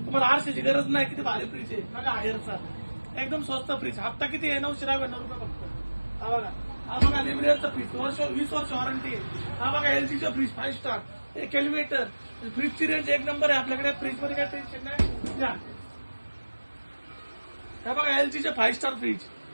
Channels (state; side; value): inverted; both; correlation -1.00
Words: तुम्हाला आरशाची गरज नाही, किती भारी फ्रीज आहे. बघा हायरचा एकदम स्वस्त फ्रीज. हप्ता किती आहे? 999 रुपये फक्त. हा बघा लिमिटेडचा फ्रीज, 20 वर्ष वॉरंटी आहे. हा बघा एलजीचा फ्रीज 5 स्टार, एक एलिव्हेटर. फ्रीजची रेंज एक नंबर आहे आपल्याकडे. फ्रीज मध्ये काय टेन्शन नाही. हा बघा एलजीचे 5 स्टार फ्रीज,